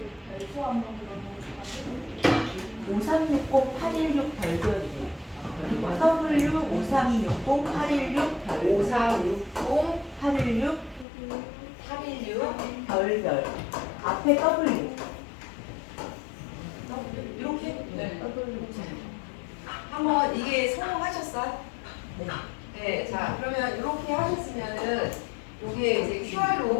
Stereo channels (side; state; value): right; drops out; at 11.1 s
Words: W 5360 816 별표. 5360 816 816 별별 앞에 W 이렇게 한번 이게 성공하셨어요? 네. 자 그러면 이렇게 하셨으면은 요게 이제